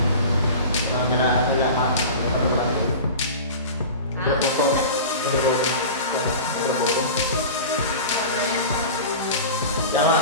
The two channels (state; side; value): inverted; both; correlation -0.34